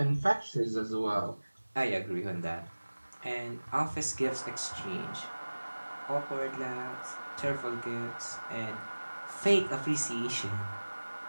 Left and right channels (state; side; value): inverted; both; correlation -1.00